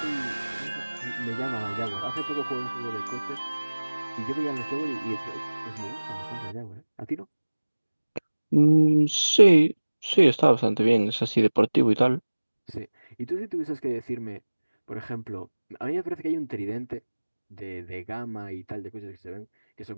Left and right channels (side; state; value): both; inverted; correlation -1.00